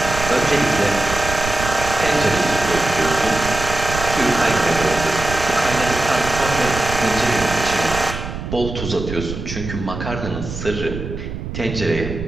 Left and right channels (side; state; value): right; noise; rumble, 7 dB below the sound